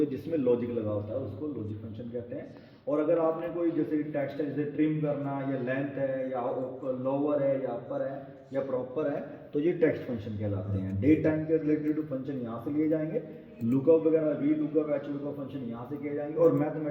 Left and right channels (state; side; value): identical; both; correlation 1.00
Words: जिसमें लॉजिक लगा होता है उसको लॉजिक फंक्शन कहते हैं। और अगर आपने कोई जैसे टेक्स्ट है, जैसे ट्रिम करना, या लेंथ है, या लोअर है, या अपर है, या प्रॉपर है, तो ये टेक्स्ट फंक्शन कहलाते हैं। डेट टाइम के रिलेटेड फंक्शन यहाँ से लिए जाएंगे, लुकअप वगैरह, V lookup, H lookup function यहाँ से किए जाएंगे, और